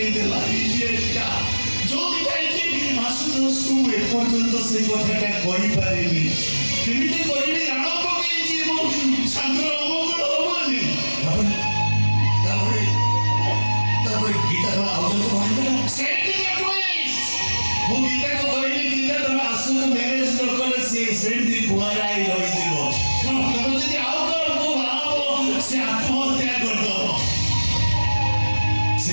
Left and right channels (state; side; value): inverted; both; correlation -1.00